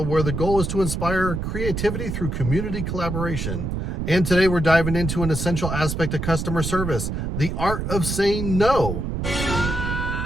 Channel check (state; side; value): noise; right; rumble, 3 dB below the sound